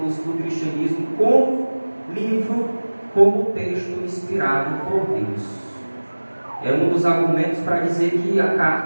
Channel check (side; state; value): both; inverted; correlation -1.00